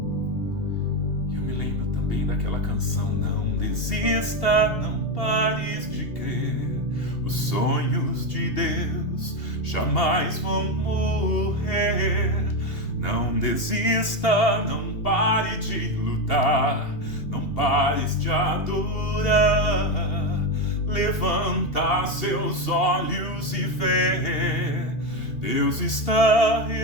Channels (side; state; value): right; late; 2.8 ms